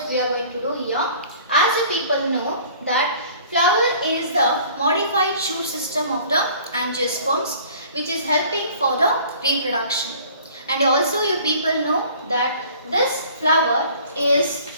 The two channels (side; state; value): both; inverted; correlation -0.50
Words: we are going to do here. As you people know that flower is the modified shoot system of the angiosperms which is helping for the reproduction. And also you people know that this flower is